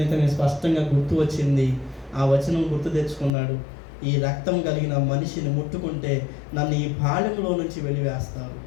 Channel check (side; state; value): right; drops out; at 3.3 s